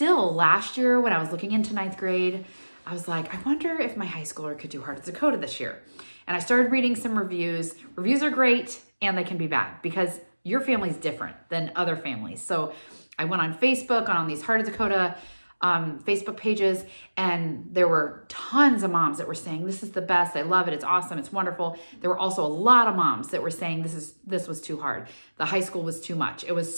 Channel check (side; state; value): both; inverted; correlation -1.00